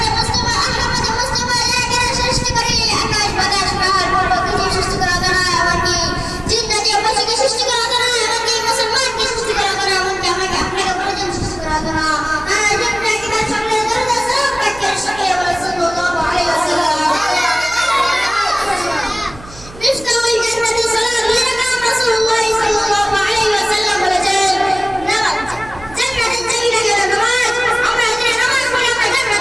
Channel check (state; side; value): noise; right; hum, 18 dB below the sound